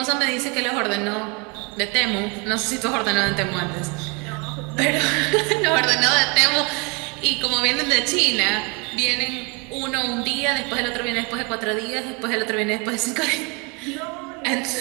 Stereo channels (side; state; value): left; quieter; 31.1 dB